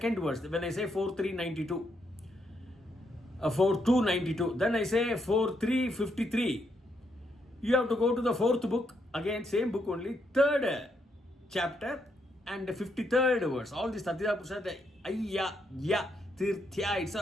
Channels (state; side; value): normal; both; correlation 0.77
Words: verse. When I say 4.392, 4.292, then I say 4.353. You have to go to the fourth book, again same book only, third chapter and the 53rd verse. All these Tatida Purusa, the Ayya, Ya, Tirthya, it's